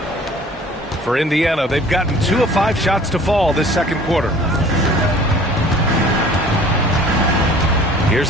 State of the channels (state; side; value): normal; both; correlation 0.49